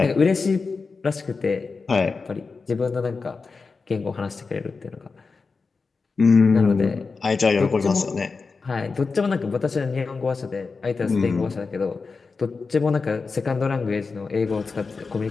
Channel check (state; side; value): quieter; right; 4.5 dB